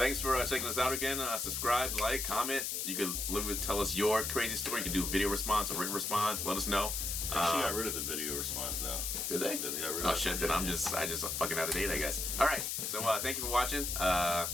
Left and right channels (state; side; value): noise; left; hiss, 1 dB below the sound